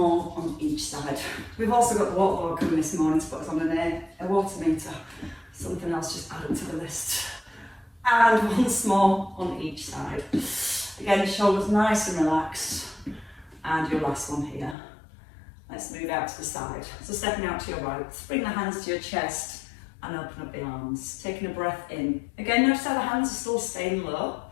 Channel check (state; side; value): drops out; right; at 14.8 s